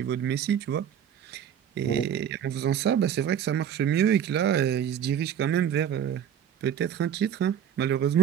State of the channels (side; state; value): left; quieter; 9.2 dB